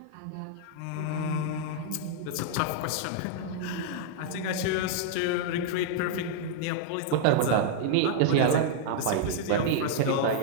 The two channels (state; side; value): different; both; correlation -0.01